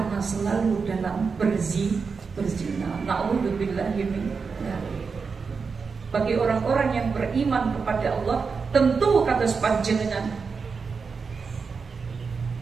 selalu dalam berzina. Na'udzubillahi min dzalik. Bagi orang-orang yang beriman kepada Allah, tentu kata sepanjangnya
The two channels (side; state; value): left; quieter; 5.2 dB